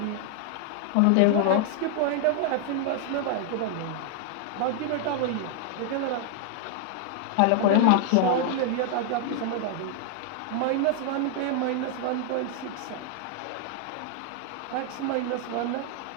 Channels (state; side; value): different; both; correlation 0.00